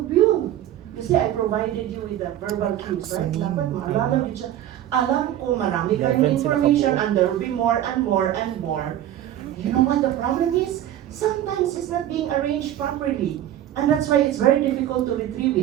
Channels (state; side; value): quieter; left; 12.0 dB